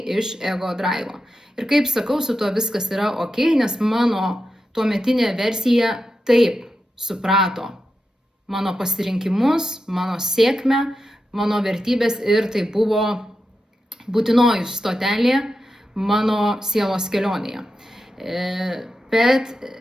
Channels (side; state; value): both; normal; correlation 0.89